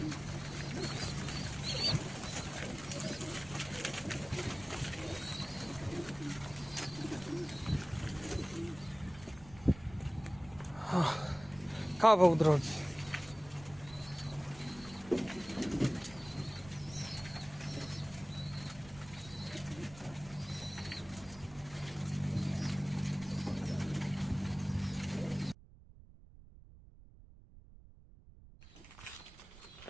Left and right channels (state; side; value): noise; right; rumble, 19 dB below the sound